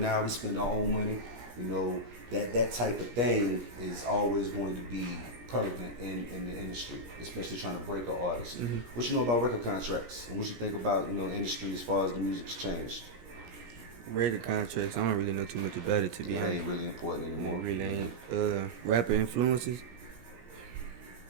We spend our own money. That type of thing is always going to be prevalent in the industry, especially trying to break an artist. Mm-hmm. What you know about record contracts, and what you think about industry as far as the music's changed? Record contracts, I don't really know too much about it, to be It honest. ain't really important anymore. It really ain't. Rapper influences,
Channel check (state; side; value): late; left; 17 ms